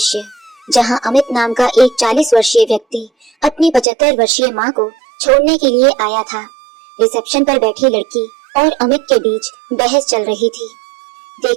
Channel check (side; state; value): left; drops out; at 3.9 s